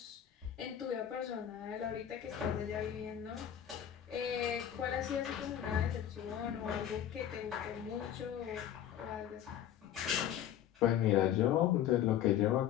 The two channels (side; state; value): right; quieter; 10.4 dB